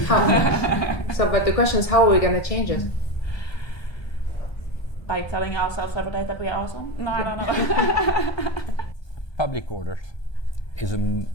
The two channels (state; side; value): late; right; 1.2 ms